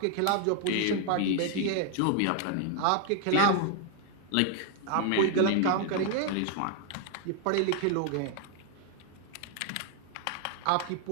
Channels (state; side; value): different; both; correlation 0.00